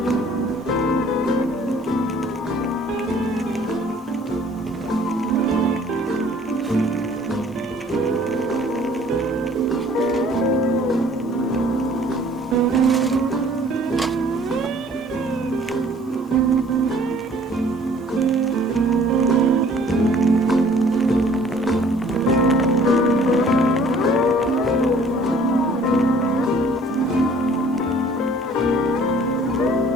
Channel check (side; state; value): both; normal; correlation 0.55